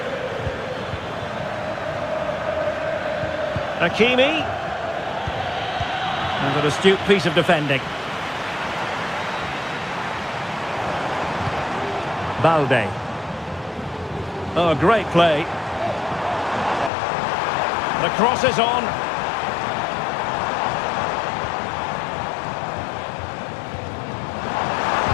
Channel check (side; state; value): right; drops out; at 16.9 s